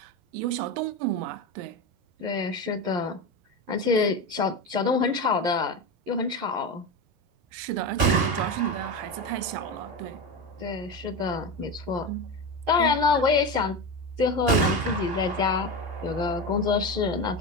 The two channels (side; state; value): left; late; 11 ms